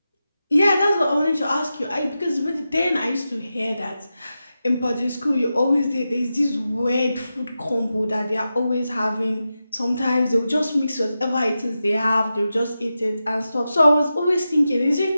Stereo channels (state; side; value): inverted; both; correlation -0.91